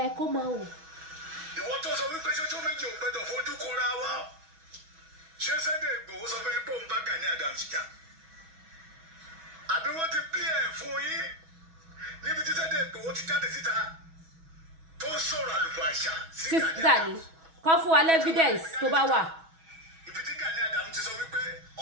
Kó máa wò. Ìwọ tó sọ wípé ṣoṣo méjì ò gbọdọ̀ fojú kóra wá. Ṣé Sunday Igboho sọ fún yín pé òun bá Gani Adams jà? Àbí wọ́n ti pín ẹ̀ fún yín níbi tí Sunday Igboho ti jáde síta tó ń sọ̀rọ̀ àlùfàǹṣà sí Gani. Kọ́ fún wa evidence tó bá wà. Ibi tí Gani Adams ti sọ wípé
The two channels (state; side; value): late; left; 6.2 ms